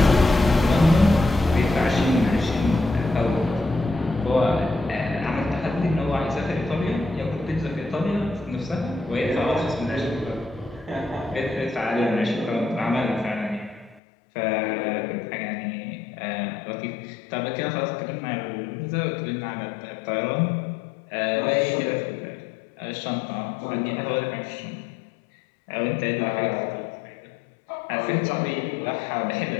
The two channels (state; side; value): drops out; right; at 14.0 s